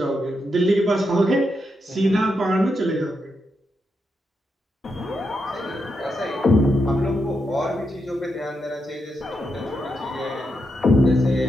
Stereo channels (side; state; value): both; normal; correlation 0.84